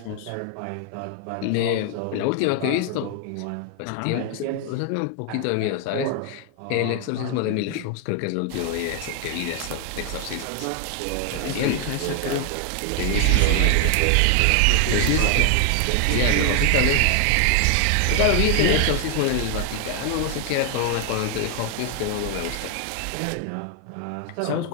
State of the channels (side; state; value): both; different; correlation 0.00